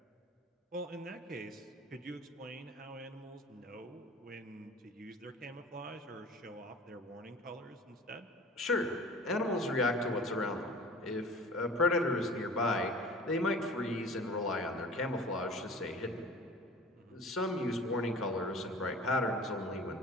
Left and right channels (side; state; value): both; normal; correlation 0.42